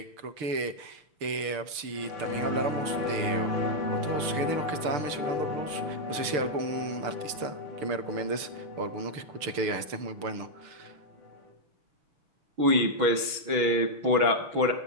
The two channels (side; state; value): left; late; 6.7 ms